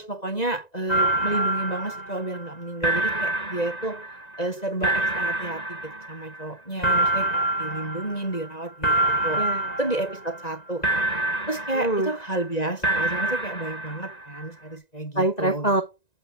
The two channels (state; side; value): late; right; 1.9 ms